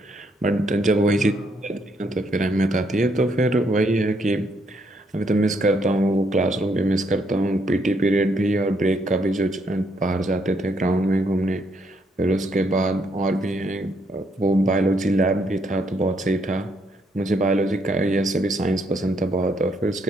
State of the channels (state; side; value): normal; both; correlation 0.73